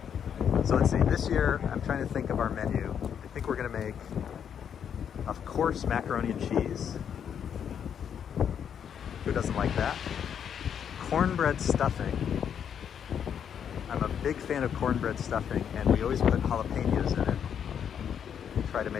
So let's see, this year I'm trying to think of our menu. I think we're gonna make, of course, macaroni and cheese. Who doesn't like that? Cornbread stuffing. I'm a big fan of cornbread stuffing, and we always put jalapenos in it. Try to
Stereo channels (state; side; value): quieter; right; 8.2 dB